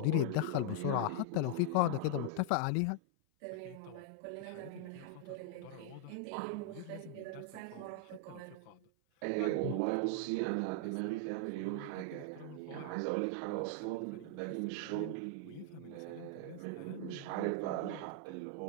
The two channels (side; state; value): both; different; correlation 0.00